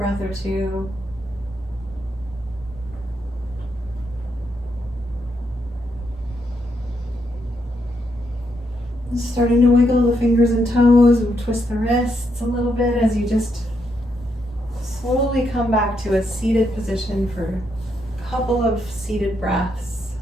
or two. Starting to wiggle the fingers and toes and twist the wrists a little bit as you just slowly come back to a seated position for a couple of seated breaths.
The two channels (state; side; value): normal; both; correlation 0.79